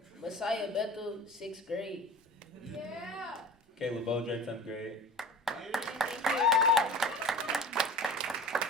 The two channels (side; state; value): both; normal; correlation 0.37